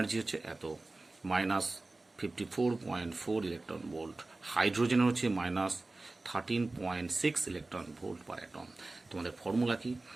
হচ্ছে এত, 54.4 ইলেকট্রন ভোল্ট, হাইড্রোজেনের হচ্ছে -13.6 ইলেকট্রন ভোল্ট পার অ্যাটম। তোমাদের ফর্মুলা কি?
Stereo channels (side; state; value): left; quieter; 3.1 dB